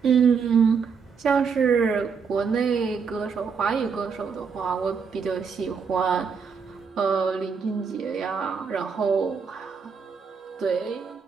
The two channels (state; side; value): quieter; left; 5.9 dB